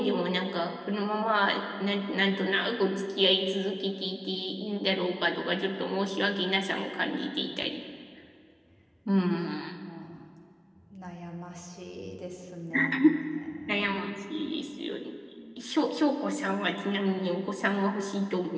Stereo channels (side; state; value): both; identical; correlation 1.00